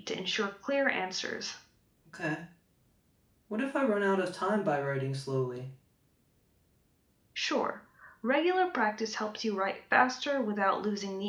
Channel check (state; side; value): identical; both; correlation 1.00